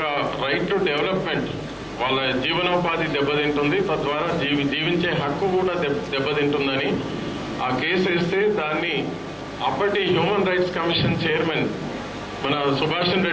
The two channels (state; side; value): identical; both; correlation 1.00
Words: రైట్ టు డెవలప్మెంట్, వాళ్ళ జీవనోపాధి దెబ్బతింటుంది, తద్వారా జీవించే హక్కు కూడా దెబ్బతింటుందని ఆ కేసు వేస్తే దాన్ని అప్పటి హ్యూమన్ రైట్స్ కమిషన్ చైర్మన్ మన సుభాషన్